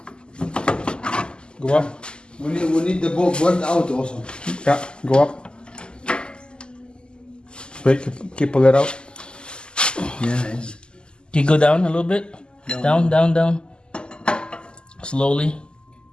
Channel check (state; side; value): late; right; 0.048 ms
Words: Go up. We need the bolt out also. Yeah, go up. Wait, keep pull it out. Yes. Can you go down a little bit? Down. Slowly.